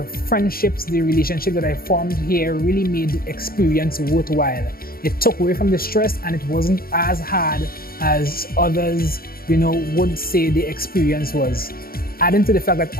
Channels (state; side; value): late; right; 0.43 ms